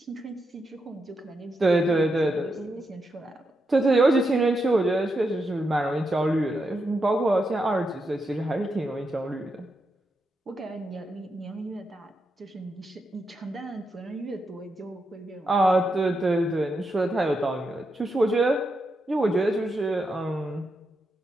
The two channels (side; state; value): both; normal; correlation 0.84